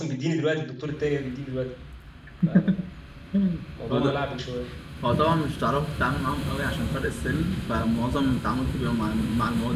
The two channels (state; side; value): identical; both; correlation 1.00